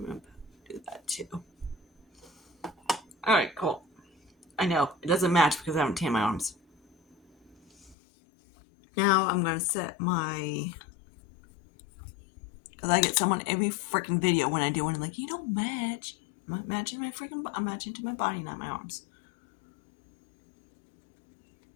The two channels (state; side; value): drops out; right; at 8.0 s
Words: gonna do that too. Alright, cool. I know, it doesn't match because I haven't tanned my arms. Now I'm gonna set my... Because I get someone every freaking video when I do one, and like, you don't match. I'm not matching my freaking... I'm matching to my body, not my arms.